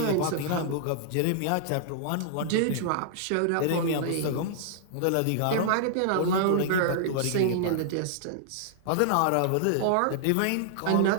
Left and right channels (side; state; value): both; different; correlation -0.01